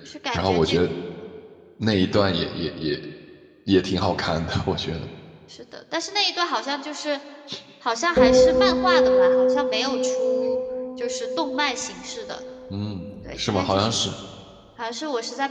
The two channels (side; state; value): both; identical; correlation 1.00